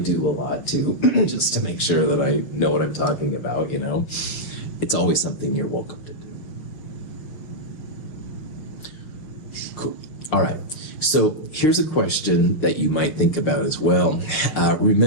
a lot too, just to make sure that I know what I'm talking about, you know. It's always something you're welcome to do. Cool. All right. So here's a question that you might think about as well.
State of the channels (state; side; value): late; right; 6.5 ms